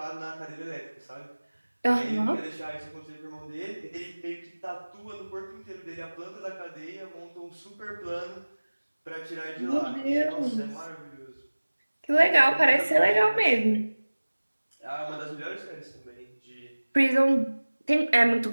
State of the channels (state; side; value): inverted; both; correlation -1.00